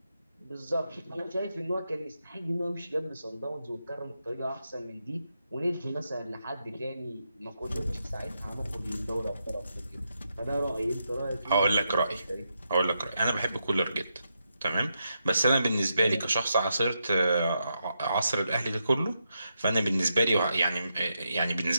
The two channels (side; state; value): both; inverted; correlation -0.84